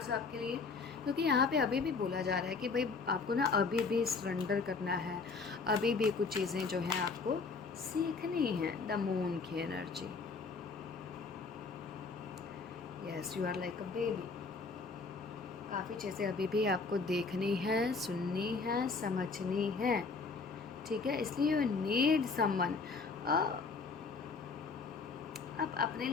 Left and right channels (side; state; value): right; quieter; 4.5 dB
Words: आपके लिए, क्योंकि यहाँ पे अभी भी बोला जा रहा है कि भाई आपको ना अभी भी सरेंडर करना है, अभी भी कुछ चीज़ें जो हैं आपको सीखनी है। द मून की energy, yes you are like a baby, काफ़ी चीज़ें अभी भी आपको देखनी है, सुननी है, समझनी है, ठीक है। इसलिए यू नीड समवन। आप अपने